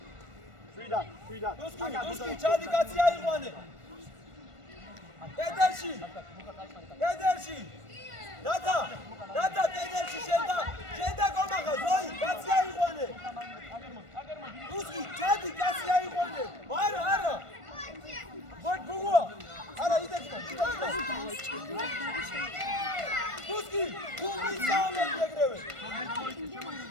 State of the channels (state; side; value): late; left; 1.5 ms